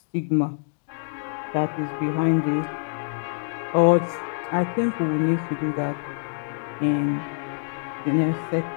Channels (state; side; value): silent; right; digital silence